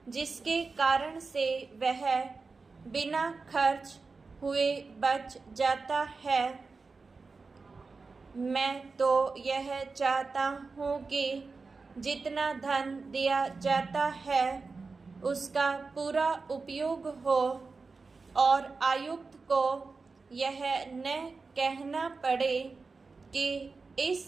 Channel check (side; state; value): left; quieter; 4.3 dB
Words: जिसके कारण से वह बिना खर्च हुए बच जाता है। मैं तो यह चाहता हूँ कि जितना धन दिया जाता है उसका पूरा उपयोग हो और आयुक्त को यह न कहना पड़े कि इस